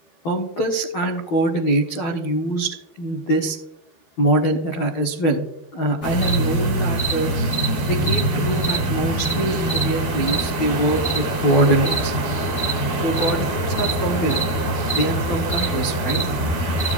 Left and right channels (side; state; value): right; late; 12 ms